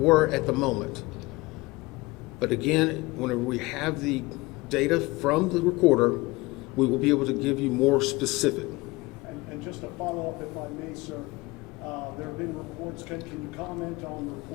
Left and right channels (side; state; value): right; quieter; 22.2 dB